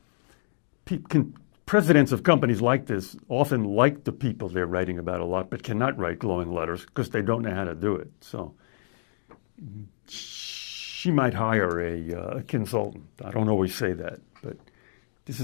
Presidents of companies like this often like the people they're writing about a lot, but cannot write glowing letters because they don't know how to do it. So she might hire a consultant. I don't always say that. but this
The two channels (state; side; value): silent; right; digital silence